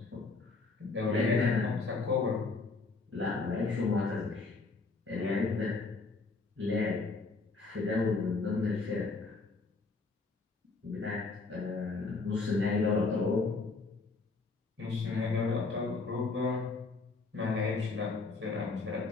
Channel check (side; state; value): right; quieter; 3.9 dB